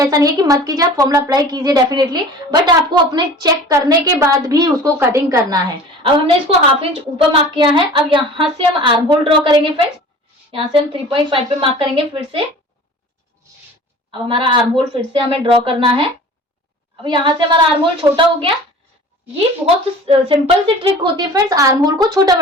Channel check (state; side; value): normal; both; correlation 0.42